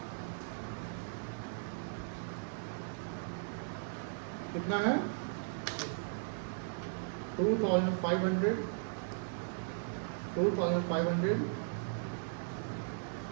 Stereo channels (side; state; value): left; silent; digital silence